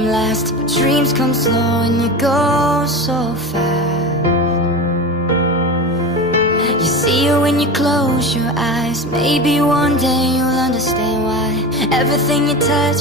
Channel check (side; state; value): both; normal; correlation 0.27